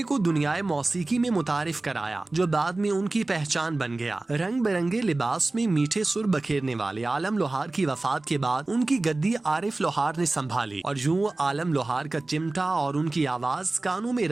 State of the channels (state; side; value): quieter; left; 3.0 dB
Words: को दुनियाए मौसीकी में मुतारिफ कराया जो बाद में उनकी पहचान बन गया। रंग बिरंगे लिबास में मीठे सुर बखेरने वाले आलम लोहार की वफात के बाद उनकी गद्दी आरिफ लोहार ने संभाली और आलम लोहार का चिमटा और उनकी आवाज कानों में